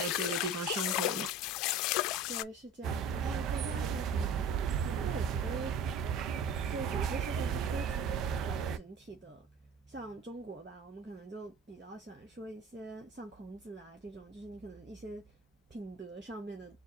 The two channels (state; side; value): normal; both; correlation 0.37